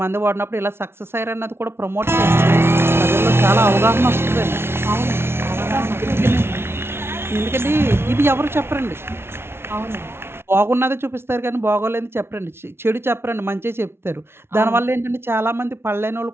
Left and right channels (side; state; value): left; late; 0.12 ms